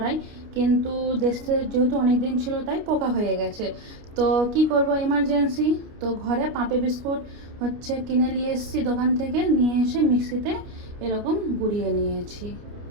কিন্তু দেশে যেহেতু অনেক দিন ছিল তাই পোকা হয়ে গেছে। তো কি করব এমার্জেন্সি, তো ঘরে পাপে বিস্কুট কিনে নিয়ে এসেছি দোকান থেকে, নিয়ে এসে মিক্সিতে এরকম গুঁড়িয়ে নিয়েছি।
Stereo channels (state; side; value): late; left; 29 ms